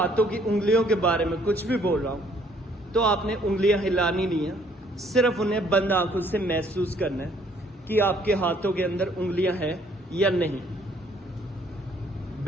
की उंगलियों के बारे में कुछ भी बोल रहा हूं तो आपने उंगलियां हिलानी नहीं है, सिर्फ उन्हें बंद आंखों से महसूस करना है कि आपके हाथों के अंदर उंगलियां हैं या नहीं।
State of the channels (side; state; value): both; normal; correlation 0.63